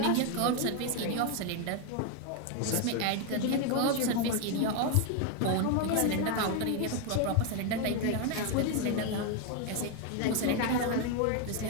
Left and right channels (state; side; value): different; both; correlation 0.01